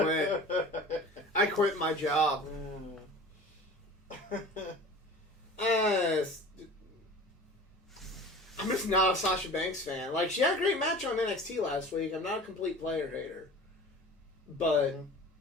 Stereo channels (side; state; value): both; normal; correlation 0.39